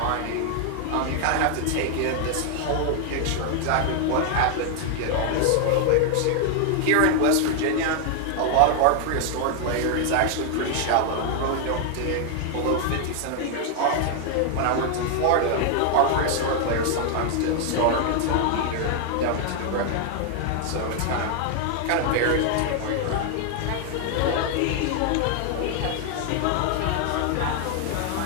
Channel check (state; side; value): different; both; correlation 0.00